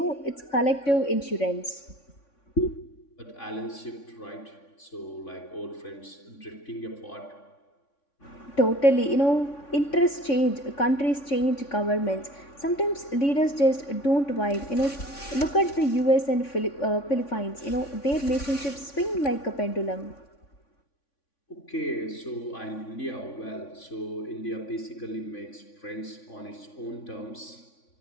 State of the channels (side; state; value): right; late; 3.5 ms